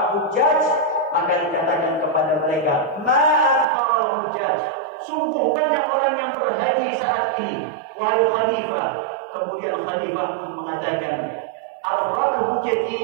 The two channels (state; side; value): drops out; left; at 3.7 s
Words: hujjaj, maka dikatakan kepada mereka, ma'aktsarul hujjaj, sungguh banyak orang yang berhaji saat ini, wahai khalifah. Kemudian khalifah pun mengatakan, ar-rakbu